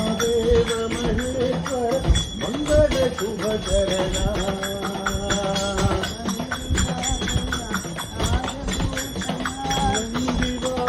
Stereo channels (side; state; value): both; identical; correlation 1.00